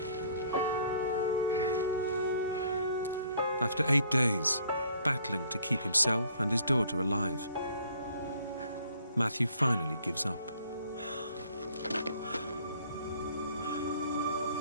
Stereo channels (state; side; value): inverted; both; correlation -0.60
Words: After 8 days, battling to keep himself and his daughter alive, Matthew finally gives up.